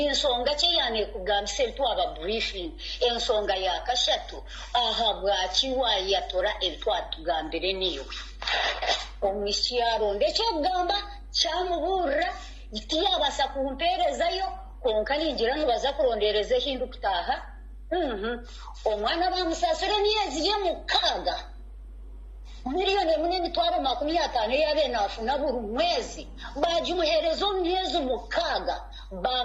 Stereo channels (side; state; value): both; identical; correlation 1.00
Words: insonga cye yane kugambise twaba briefing ensonga ya kashatu aha bwakiwa yatora etwatugambire niyo omisiaro ndecyo gamba cyamubura itiyabasa kumperezayo konka ningira ntubaza kurondereze hindu kutaha omwana bamusasure myezi ye mukaga miliyoni munini twaba 50 yabe nafuna buri mwezi bajumuherezo myezi mukaga